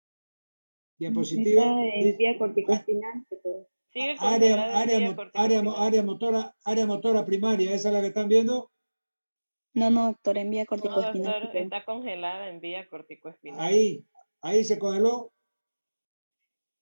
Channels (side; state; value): both; inverted; correlation -1.00